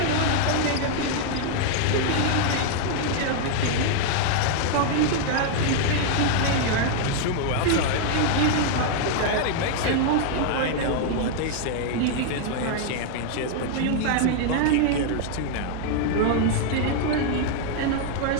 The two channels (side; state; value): both; different; correlation 0.00